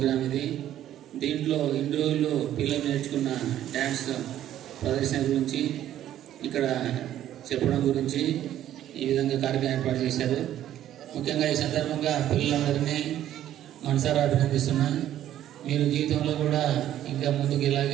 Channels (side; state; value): left; quieter; 12.0 dB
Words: ఇది. దీంట్లో ఇన్ని రోజులు పిల్లలు నేర్చుకున్న డ్యాన్స్ ప్రదర్శన గురించి ఇక్కడ చెప్పడం గురించి ఈ విధంగా కార్యక్రమం ఏర్పాటు చేశారు. ముఖ్యంగా ఈ సందర్భంగా పిల్లలందరినీ మనసారా అభినందిస్తున్నా. మీరు జీవితంలో కూడా ఇంకా ముందుకు